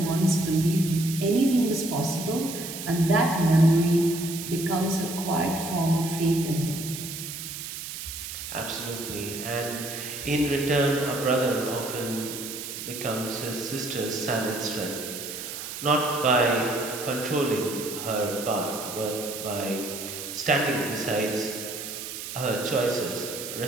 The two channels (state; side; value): noise; right; hiss, 8 dB below the sound